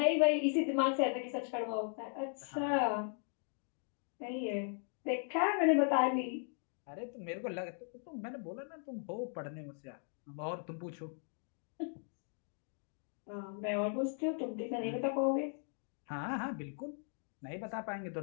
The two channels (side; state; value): right; silent; 52 dB below the other